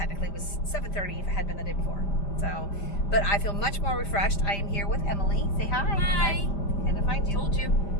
was 7:30 if it had been the day before. So, but I feel much more refreshed. I am here with Emily. Say hi. Hi. Gonna find you. Told you.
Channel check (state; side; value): late; right; 5.0 ms